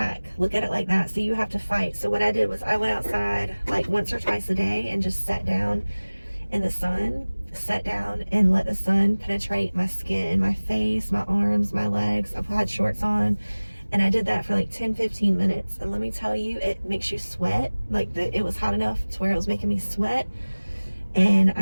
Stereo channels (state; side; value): inverted; both; correlation -1.00